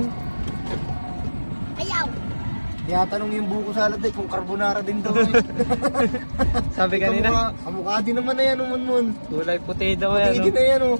Ayaw! Tinatanong yung buko salad kung carbonara din daw. Sabi kanina, Kamukha din naman na yan, Munmun. kulay puti daw Puti yan. din na yan, oh.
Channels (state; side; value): inverted; both; correlation -1.00